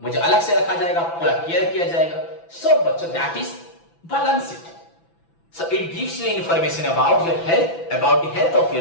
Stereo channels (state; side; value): late; right; 6.0 ms